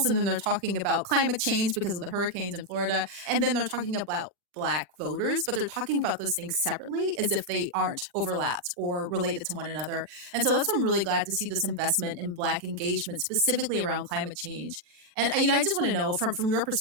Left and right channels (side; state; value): left; late; 36 ms